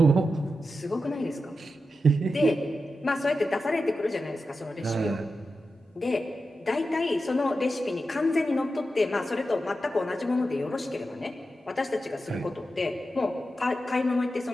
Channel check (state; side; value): normal; both; correlation 0.90